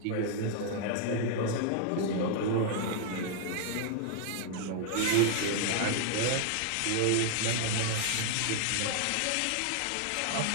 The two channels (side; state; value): both; different; correlation 0.00